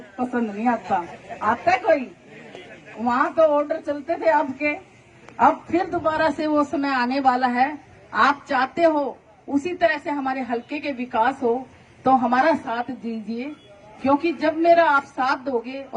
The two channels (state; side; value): identical; both; correlation 1.00